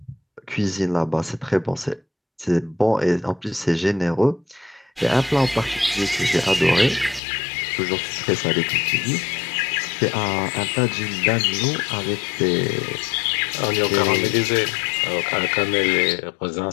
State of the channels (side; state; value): right; drops out; at 7.2 s